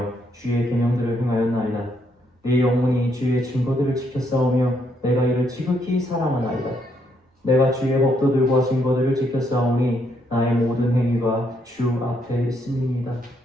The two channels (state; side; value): normal; both; correlation 0.74